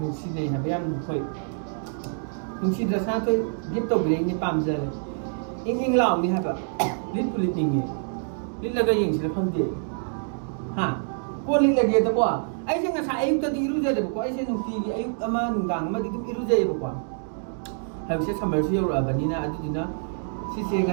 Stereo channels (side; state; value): left; silent; digital silence